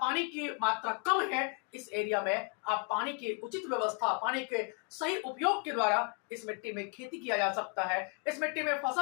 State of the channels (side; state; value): right; quieter; 35.1 dB